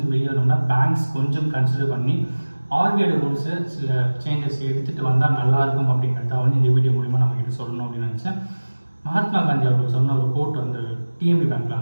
வெளியே வரணும்னா பேங்க்ஸ் கொஞ்சம் கன்சிடர் பண்ணி ஆர்பிஐ ரூல்ஸை சில சேஞ்சஸ் எடுத்துகிட்டு வந்தால் நல்லாயிருக்கும் அப்படிங்கிறத வந்து இந்த வீடியோ மூலிமா நம்ம கிட்ட சொல்லணும் அப்படின்னு நினச்சேன். மகாத்மா காந்தி அவர்கள் சொன்ன ஒரு கோட் வந்து டிஎம்பி பேங்க்கில்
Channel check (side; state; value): both; inverted; correlation -1.00